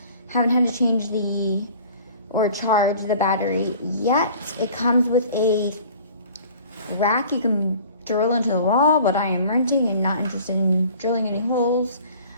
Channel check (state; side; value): inverted; both; correlation -0.47